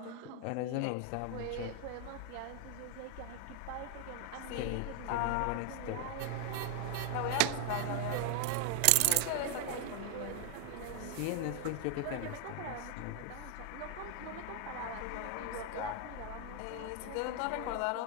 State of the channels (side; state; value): both; different; correlation 0.00